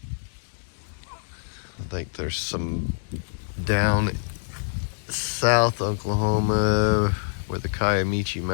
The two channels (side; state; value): right; silent; digital silence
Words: I think there's some down south Oklahoma where the Kiamichi